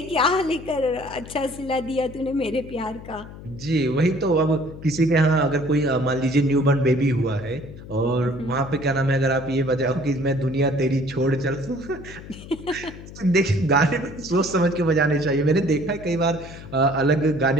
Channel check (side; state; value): left; noise; hum, 15 dB below the sound